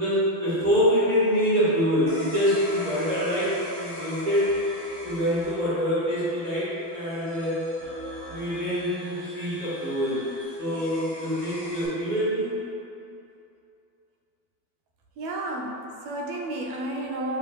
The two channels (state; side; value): late; left; 12 ms